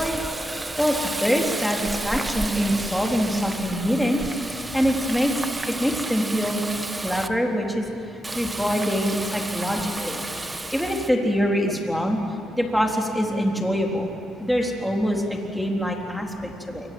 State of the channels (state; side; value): normal; both; correlation 0.87